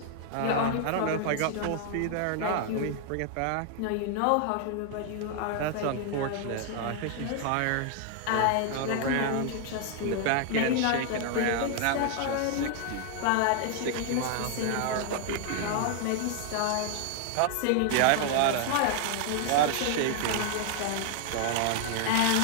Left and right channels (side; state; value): both; different; correlation 0.00